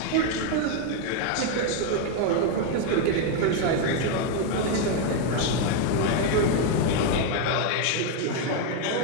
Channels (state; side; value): different; both; correlation 0.01